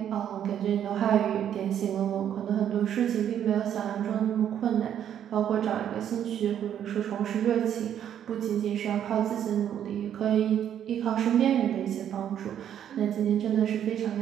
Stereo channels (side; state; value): left; quieter; 9.8 dB